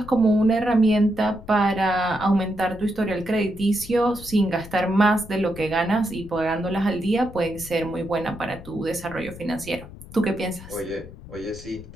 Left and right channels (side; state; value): left; noise; rumble, 16 dB below the sound